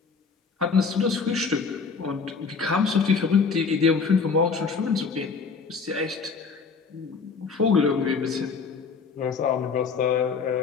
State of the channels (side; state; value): right; quieter; 5.2 dB